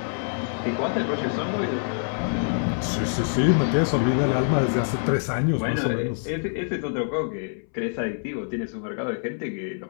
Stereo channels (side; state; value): right; silent; 61 dB below the other